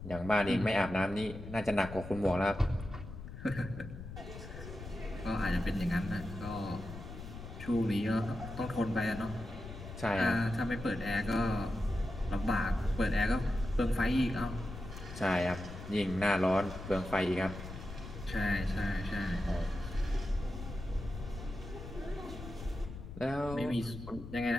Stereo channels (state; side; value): noise; left; rumble, 11 dB below the sound